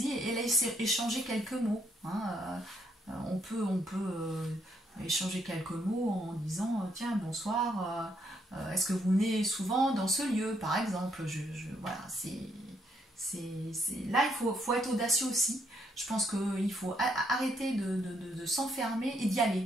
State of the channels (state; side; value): normal; both; correlation 0.73